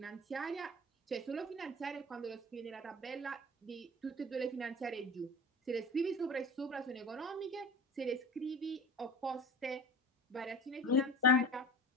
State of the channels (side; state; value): both; normal; correlation 0.36